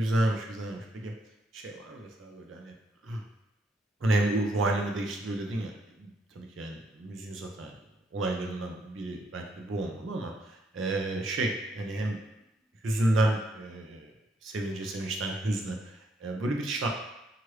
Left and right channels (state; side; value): normal; both; correlation 0.74